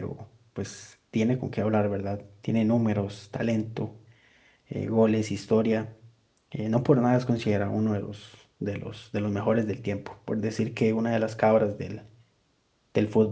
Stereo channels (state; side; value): identical; both; correlation 1.00